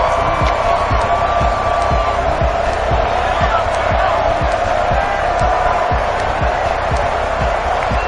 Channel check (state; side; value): identical; both; correlation 1.00